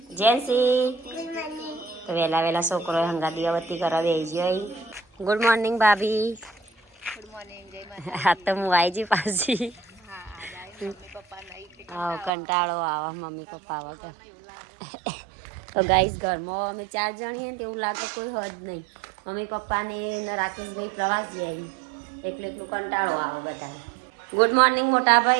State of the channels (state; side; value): drops out; left; at 12.3 s